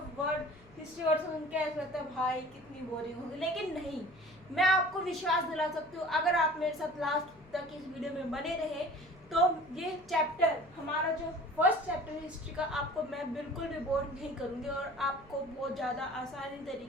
वर्ड सुन के ऐसा लगता है भाई कितनी बोरिंग होगी, लेकिन नहीं, मैं आपको विश्वास दिला सकती हूँ अगर आप मेरे साथ लास्ट तक इस वीडियो में बने रहे तो ये चैप्टर, हमारा जो फर्स्ट चैप्टर है हिस्ट्री का, आपको मैं बिल्कुल भी बोर नहीं करूँगी और आपको बहुत ज़्यादा आसानी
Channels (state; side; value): noise; left; hum, 25 dB below the sound